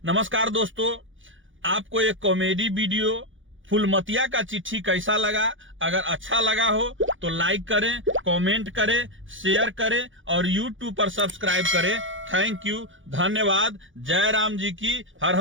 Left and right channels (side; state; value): left; late; 0.57 ms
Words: नमस्कार दोस्तों, आपको एक कॉमेडी वीडियो फूलमतिया का चिट्ठी कैसा लगा? अगर अच्छा लगा हो तो लाइक करें, कमेंट करें, शेयर करें और YouTube पर सब्सक्राइब करें। थैंक यू, धन्यवाद। जय राम जी की, हर